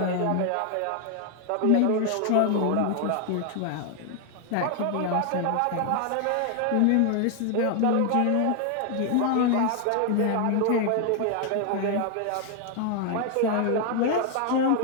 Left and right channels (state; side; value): different; both; correlation 0.00